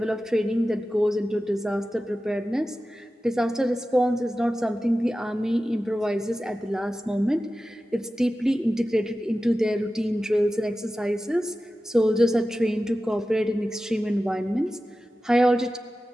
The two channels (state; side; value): normal; both; correlation 0.94